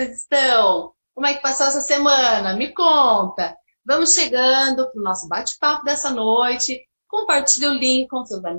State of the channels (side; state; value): both; inverted; correlation -1.00